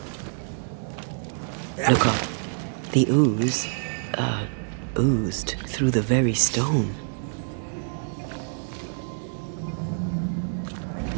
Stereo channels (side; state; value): left; silent; digital silence